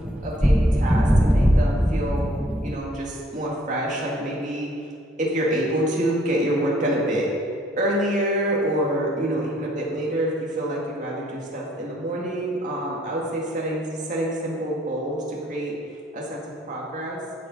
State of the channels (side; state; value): both; normal; correlation 0.63